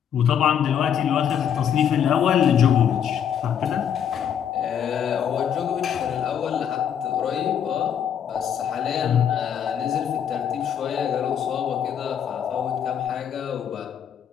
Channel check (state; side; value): quieter; right; 8.7 dB